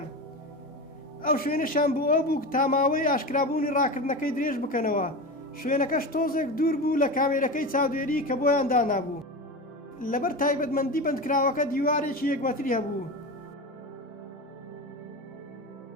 ئەو شوێنەشان بۆ ئەو بوو تا ماوەی ئاشکرابوونی ڕاکردنەکەی درێژ بکەنەوە. شوێنەکەش تۆزێک دوور بوو لە کامێرەکەی چاودێری کە بۆیان دانابوو. لەبەر تایبەتمەندی بەندکراوەکە دیوارێکی 1 مەتری هەبوو.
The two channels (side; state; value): both; normal; correlation 0.24